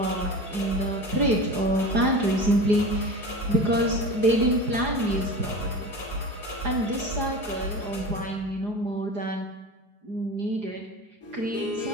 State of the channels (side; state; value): left; late; 4.8 ms